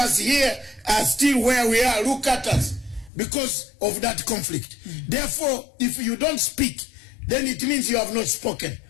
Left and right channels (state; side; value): drops out; right; at 3.1 s